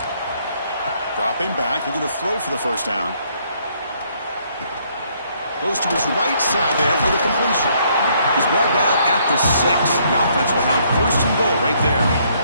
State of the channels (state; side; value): inverted; both; correlation -0.68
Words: Dropping back, looking to throw for the 1st down. Goes to his right side there for the completion. He's brought down at the 6. The offense will have 1st and goal right there.